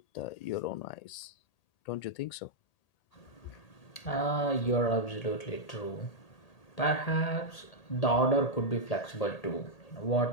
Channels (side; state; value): right; late; 1.8 ms